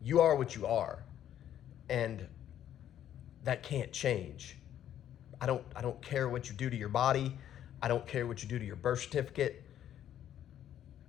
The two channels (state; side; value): quieter; right; 10.8 dB